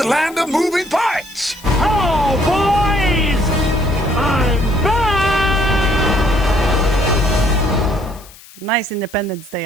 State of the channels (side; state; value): left; noise; hiss, 22 dB below the sound